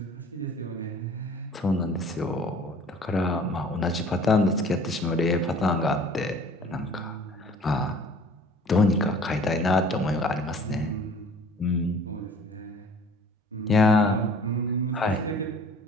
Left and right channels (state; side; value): normal; both; correlation 0.49